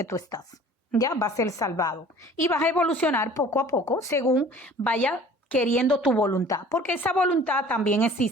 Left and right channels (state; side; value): normal; both; correlation 0.48